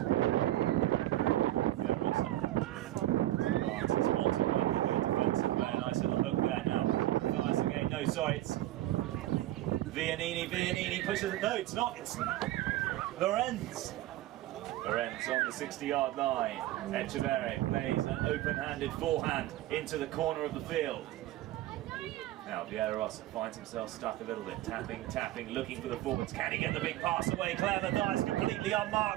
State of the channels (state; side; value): quieter; left; 15.2 dB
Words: Villarosa advances Montalban with a defensive play. Nice little hook there now. Nice again. No, sorry, it's Vianini pushes it. No, it's not. It's Lorenz. Lorenz on the 60-yard line. Echeverri plays an open-handed forehand into the corner of the field. Now Villarosa finds himself stuck a little bit, tapping, looking for the forwards. Can he get the big pass away? Claire Mathias completely